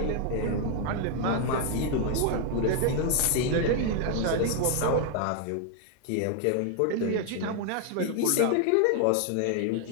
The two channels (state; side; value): different; both; correlation 0.00